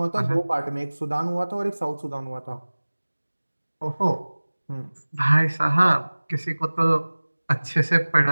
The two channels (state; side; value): inverted; both; correlation -1.00